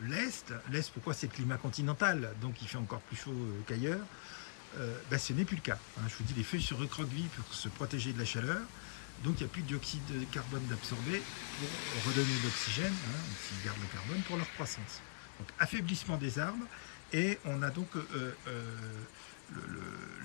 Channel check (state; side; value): silent; right; digital silence